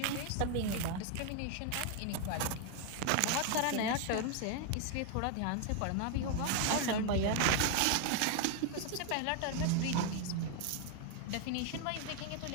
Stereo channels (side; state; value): both; different; correlation 0.00